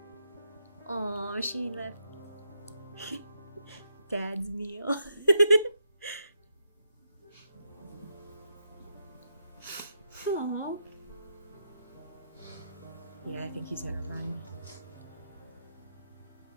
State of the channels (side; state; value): both; inverted; correlation -0.81